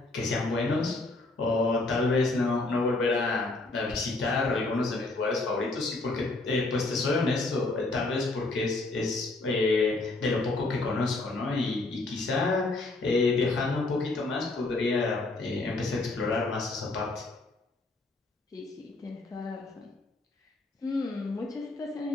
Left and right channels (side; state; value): right; quieter; 3.1 dB